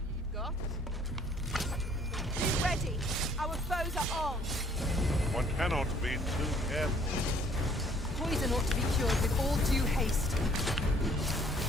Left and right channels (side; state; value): both; normal; correlation 0.59